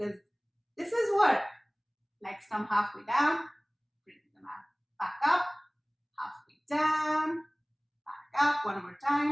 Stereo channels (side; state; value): both; identical; correlation 1.00